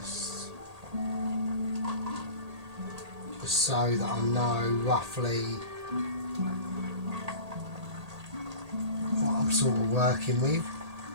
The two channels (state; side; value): late; left; 1.8 ms